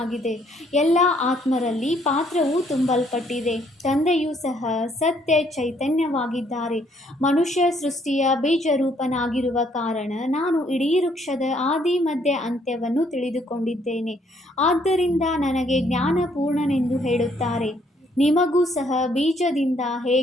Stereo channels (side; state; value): both; normal; correlation 0.67